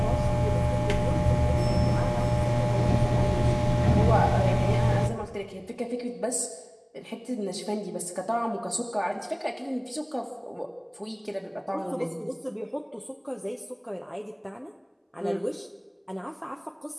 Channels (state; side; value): identical; both; correlation 1.00